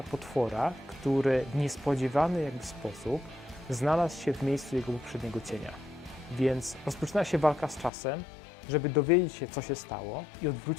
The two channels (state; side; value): drops out; right; at 7.9 s